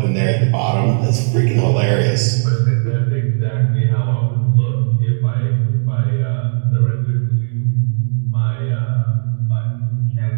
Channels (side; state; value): left; silent; digital silence